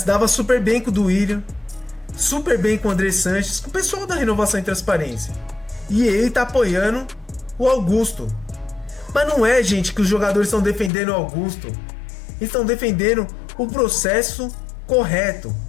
dava super bem com o Duílio, super bem com o André Sanches, com o pessoal da Renovação e Transparência. E ele tá apoiando o Augusto. Mas não é, gente, que os jogadores estão defendendo o Augusto. Estão defendendo o processo correto.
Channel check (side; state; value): right; drops out; at 10.9 s